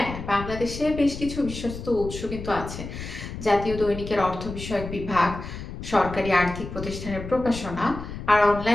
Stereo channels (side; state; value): left; noise; rumble, 9 dB below the sound